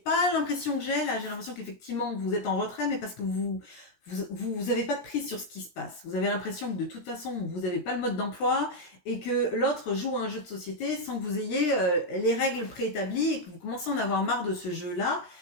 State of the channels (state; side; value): late; right; 17 ms